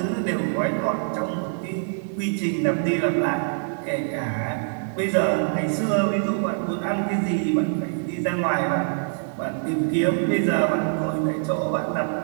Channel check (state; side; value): silent; left; 62 dB below the other